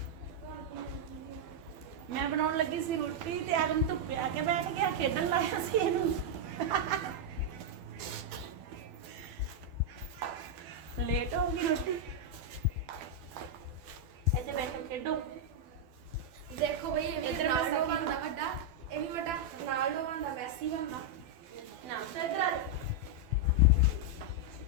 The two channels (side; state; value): left; late; 12 ms